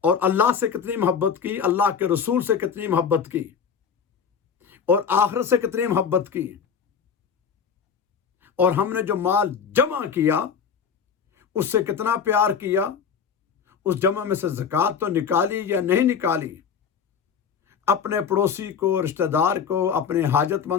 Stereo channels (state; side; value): quieter; right; 6.8 dB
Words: और अल्लाह से कितनी मोहब्बत की, अल्लाह के रसूल से कितनी मोहब्बत की, और आखिरत से कितनी मोहब्बत की। और हमने जो माल जमा किया उससे कितना प्यार किया, उस जमा में से ज़कात तो निकाली या नहीं निकाली, अपने पड़ोसी को, रिश्तेदार को, अपने